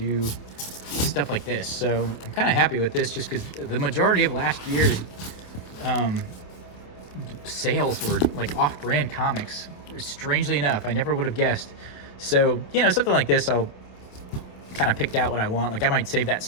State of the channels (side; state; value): right; late; 27 ms